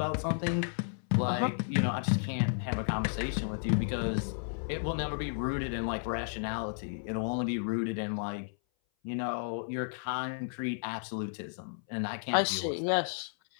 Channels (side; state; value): right; silent; 56 dB below the other